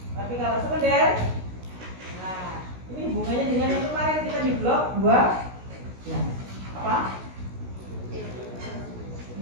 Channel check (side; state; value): left; late; 16 ms